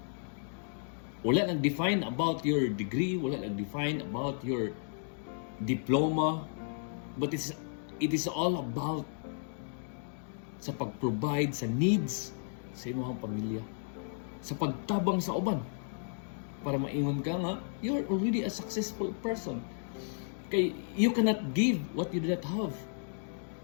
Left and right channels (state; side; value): silent; right; digital silence